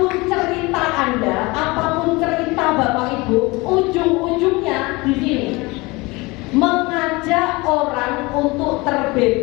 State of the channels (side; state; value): right; quieter; 23.8 dB